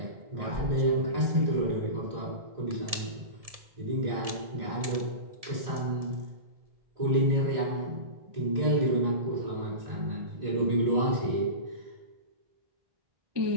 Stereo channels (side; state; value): left; late; 1.7 ms